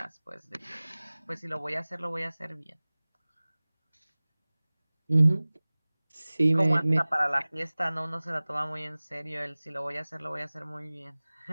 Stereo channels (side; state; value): both; inverted; correlation -1.00